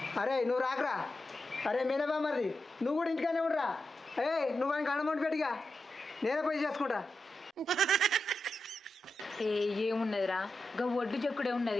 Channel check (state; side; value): normal; both; correlation 0.89